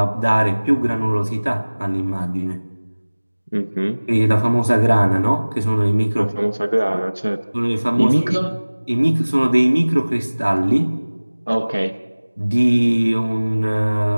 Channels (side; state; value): both; inverted; correlation -1.00